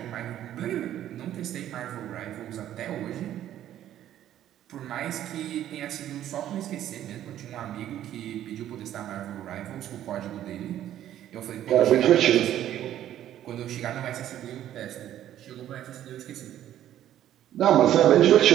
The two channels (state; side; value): quieter; left; 11.8 dB